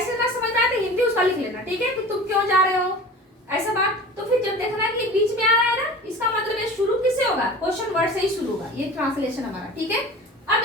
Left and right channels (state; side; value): normal; both; correlation 0.38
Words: ना समझ में आए तो हिंदी उसका लिख लेना, ठीक है, कि तुम क्यों जा रहे हो ऐसा बात, तो फिर जब देखना कि बीच में आ रहा है ना, इसका मतलब ये शुरू किससे होगा, क्वेश्चन वर्ड से ही शुरू होगा, ये ट्रांसलेशन हमारा, ठीक है। अब